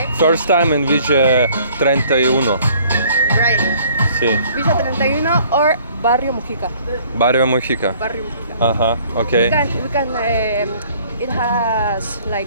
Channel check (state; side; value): inverted; both; correlation -0.57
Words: First time in Village 31. Right. Sí. Villa 31 or Barrio Mujica. Barrio Mujica. Barrio Mujica. Ага, We окей. can it has